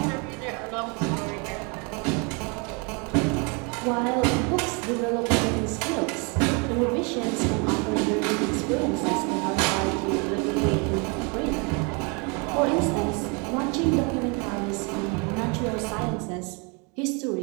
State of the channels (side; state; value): left; quieter; 32.2 dB